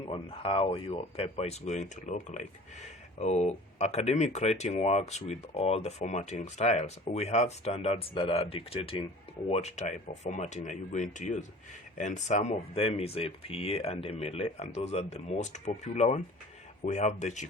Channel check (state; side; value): normal; both; correlation 0.44